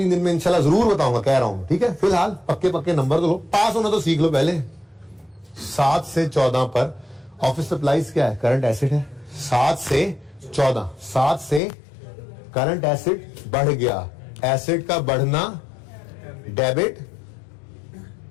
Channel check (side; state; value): right; drops out; at 11.6 s